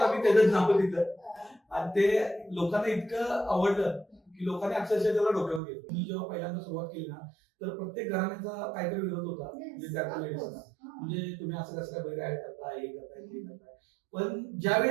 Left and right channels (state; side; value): drops out; left; at 5.6 s